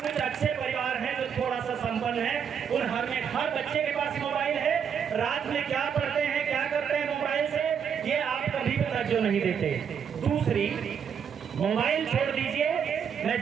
अच्छे परिवार हैं जो थोड़ा सा संपन्न है, उन हर बच्चे के पास मोबाइल है। रात में क्या पढ़ते हैं, क्या करते हैं मोबाइल से, ये आप कभी तवज्जो नहीं देते। दूसरी, मोबाइल छोड़ दीजिए, मैं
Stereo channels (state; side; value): quieter; left; 7.5 dB